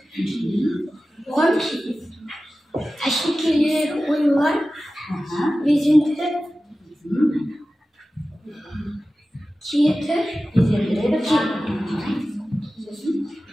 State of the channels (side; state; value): both; normal; correlation 0.95